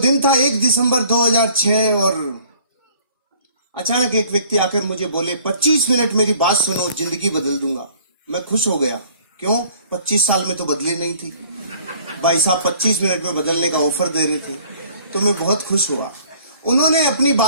था 1 दिसंबर 2006 और अचानक एक व्यक्ति आकर मुझे बोले 25 मिनट मेरी बात सुनो, जिंदगी बदल दूंगा। मैं खुश हो गया। क्यों? 25 साल में तो बदली नहीं थी। भाई साहब 25 मिनट में बदलने का ऑफर दे रहे थे, तो मैं बहुत खुश हुआ। उन्होंने अपनी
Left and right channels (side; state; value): both; inverted; correlation -0.55